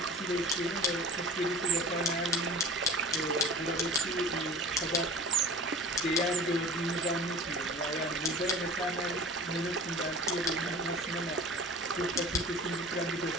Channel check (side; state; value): both; normal; correlation 0.39